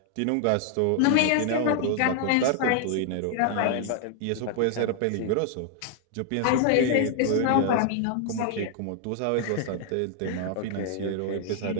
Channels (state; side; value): different; both; correlation 0.00